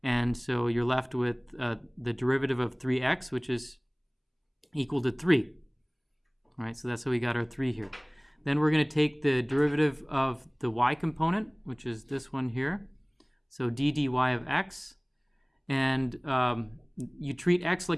And so you're left with the derivative of 3x, which is equal to 3. All right, so that's how we got our 3 here. Then we're going to take the derivative of the y component, which is this one here. So d dy of x. And you treat x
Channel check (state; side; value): identical; both; correlation 1.00